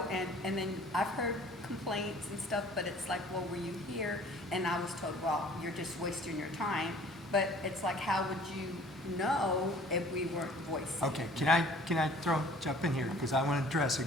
and then I've heard complaints and stuff, but it's like, well, were you here? And I was told, well, you're just wasting your time. But it's like, how would you know if we weren't voicing. Okay, can I jump in here? Because I want to address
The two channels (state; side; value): normal; both; correlation 0.51